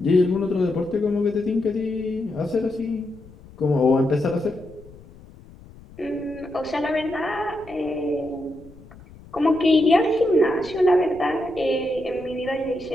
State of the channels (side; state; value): left; noise; rumble, 21 dB below the sound